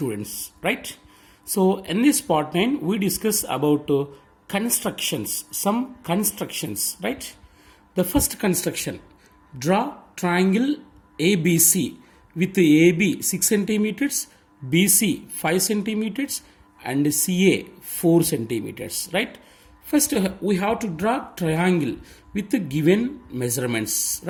right? So in this part 9 we discuss about constructions, some constructions, right? The first construction, draw triangle ABC with AB 6 centimeters, BC 5 centimeters and CA 4 centimeters, right? First, we have to draw triangle with the given measurements,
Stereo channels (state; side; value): identical; both; correlation 1.00